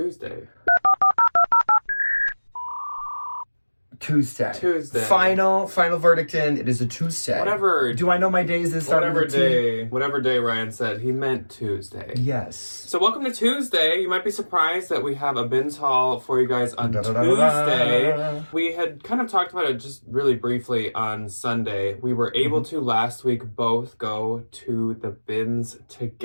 Tuesday. Final verdict in. It is a Tuesday. Whatever. Do I know my days that start with a T? Whatever day Ryan said, he meant Tuesday. Yes. So welcome to Tuesday. You might be surprised that we have a bins haul for you guys on Tuesday. We had kind of talked about it just really briefly on Sunday. We were able to last week both go to the bins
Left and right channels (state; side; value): inverted; both; correlation -1.00